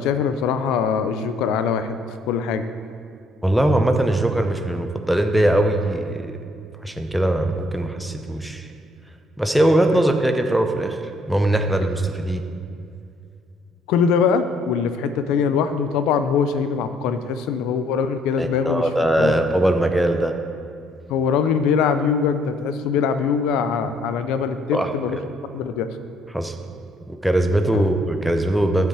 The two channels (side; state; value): both; normal; correlation 0.67